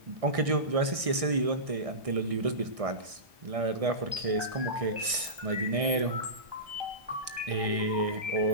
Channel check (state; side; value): late; left; 1.6 ms